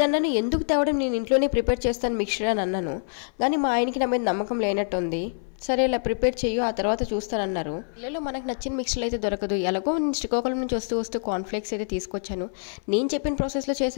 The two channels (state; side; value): silent; right; 58 dB below the other